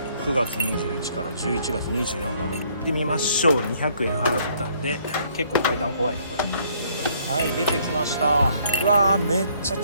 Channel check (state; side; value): inverted; both; correlation -0.64